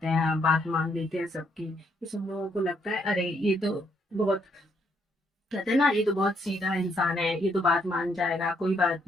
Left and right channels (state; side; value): normal; both; correlation 0.73